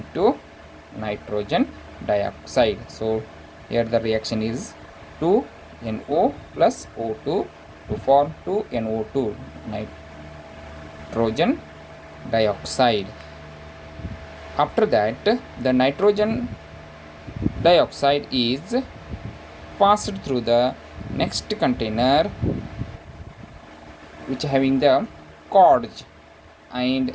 nitrogen dioxide. So here the reaction is 2NO plus O2 to form 2NO2 nitrogen dioxide. After that, the nitrogen dioxide is passed through the next container which having the cords, and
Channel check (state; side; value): identical; both; correlation 1.00